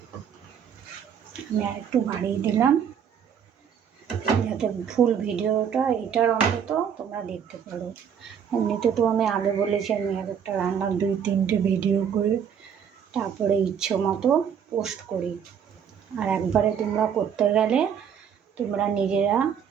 আমি আর একটু বাড়িয়ে দিলাম যাতে ফুল ভিডিওটা এটার অন্তত তোমরা দেখতে পারো। এমনিতে তো আমি আগে বলেছি আমি এক একটা রান্নার 2-3টে ভিডিও করে তারপরে ইচ্ছে মতো পোস্ট করি। আর একবারে তোমরা করতে গেলে তোমরা নিজেরা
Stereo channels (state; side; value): quieter; left; 7.9 dB